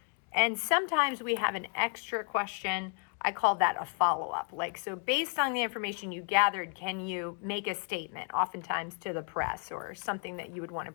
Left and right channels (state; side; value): quieter; right; 39.5 dB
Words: And sometimes we have an extra question. I call that a follow-up. Like, so based on the information you gathered, can you make a statement, oftentimes to the press or something that you would want to